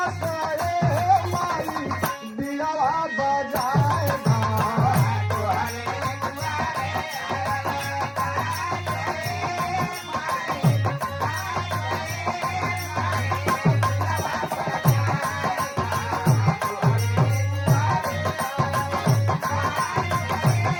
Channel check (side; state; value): both; identical; correlation 1.00